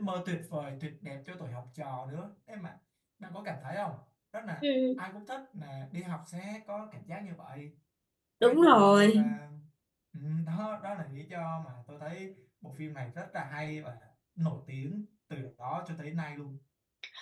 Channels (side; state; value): both; identical; correlation 1.00